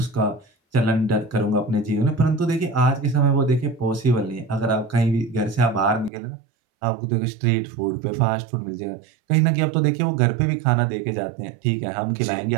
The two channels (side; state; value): left; drops out; at 6.1 s